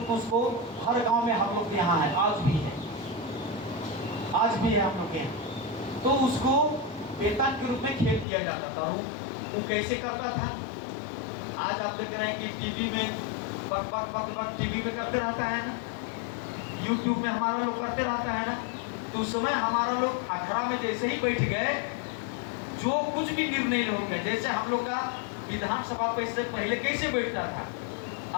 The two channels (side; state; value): right; drops out; at 8.2 s